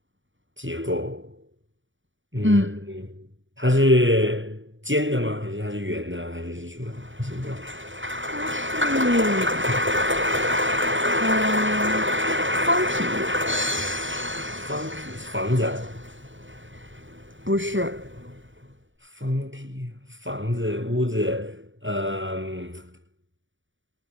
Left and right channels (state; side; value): late; left; 0.56 ms